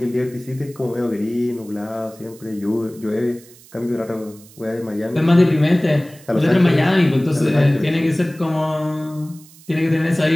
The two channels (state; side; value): noise; right; hiss, 23 dB below the sound